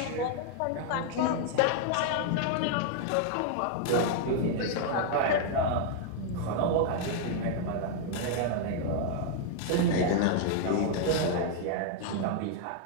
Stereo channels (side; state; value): both; different; correlation 0.00